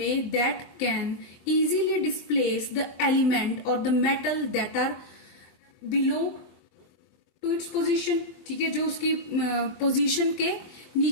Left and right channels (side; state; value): right; late; 24 ms